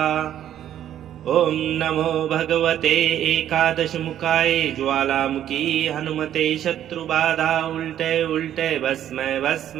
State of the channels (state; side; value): quieter; left; 11.0 dB